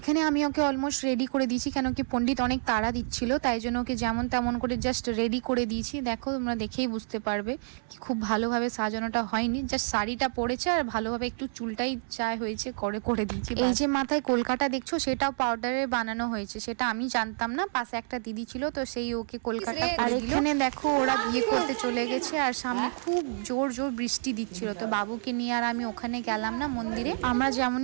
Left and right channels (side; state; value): left; silent; 59 dB below the other